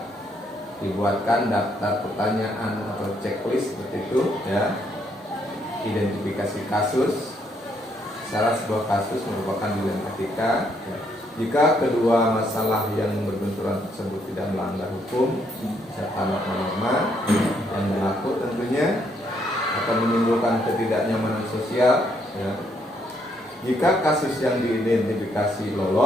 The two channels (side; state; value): both; normal; correlation 0.72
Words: daftar pertanyaan atau checklist seperti itu, ya. Identifikasi kasus, syarat sebuah kasus merupakan dilema etika, ya. Jika kedua masalah yang berbenturan tersebut tidak melanggar hukum serta norma-norma yang berlaku tentunya akan menimbulkan ketidaknyamanan sosial, ya. Jika kasus yang diidentifikasi